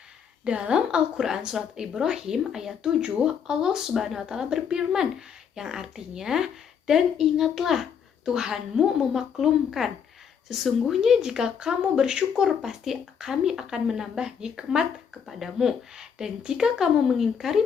Dalam Al-Quran Surat Ibrahim ayat 7, Allah Subhanahu wa taala berfirman, yang artinya, dan ingatlah Tuhanmu memaklumkan. Sesungguhnya jika kamu bersyukur, pasti kami akan menambah nikmat kepadamu. Dan jika kamu mengingkari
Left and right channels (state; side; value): quieter; right; 7.3 dB